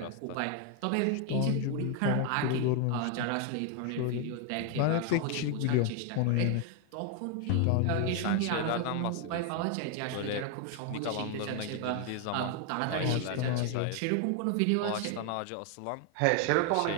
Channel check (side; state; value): both; different; correlation 0.01